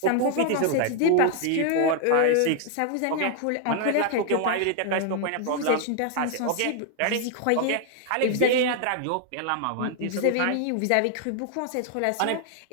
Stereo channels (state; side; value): different; both; correlation 0.00